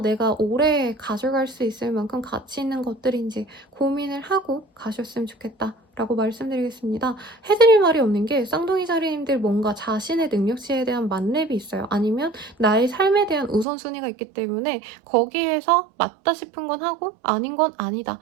오래 가져갈 수 있을 만큼 가치 있는 것들인지 고민을 하고 가셨으면 좋겠다. 라고 말씀드리겠습니다. 해드릴 말이 없는 게 쌍둥이 자리님들 뭔가 자신의 능력치에 대한 만렙이 있어요. 아니면 나의 삶에 대한 우선순위가 있기 때문에 거기에서 맞다 싶은 건 하고 아닌 건 아니다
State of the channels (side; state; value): left; drops out; at 13.7 s